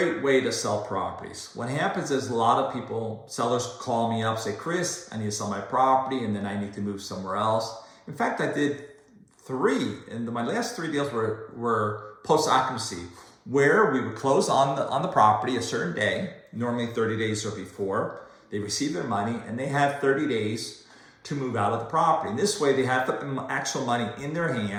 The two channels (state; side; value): identical; both; correlation 1.00